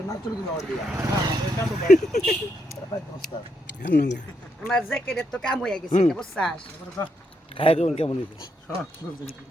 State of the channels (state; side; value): normal; both; correlation 0.79